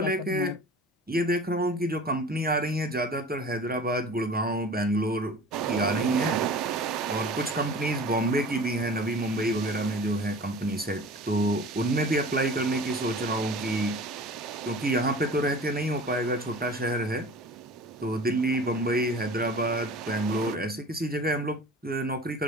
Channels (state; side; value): normal; both; correlation 0.41